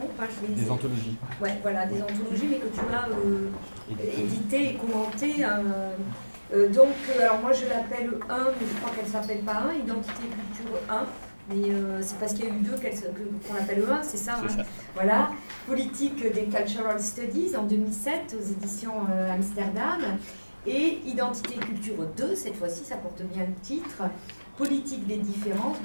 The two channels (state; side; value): inverted; both; correlation -1.00